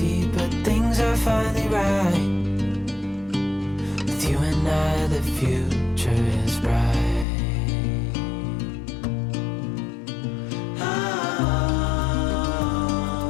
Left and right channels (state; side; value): drops out; right; at 7.2 s